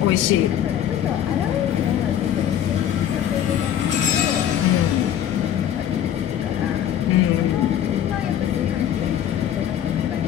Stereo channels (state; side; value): quieter; right; 10.3 dB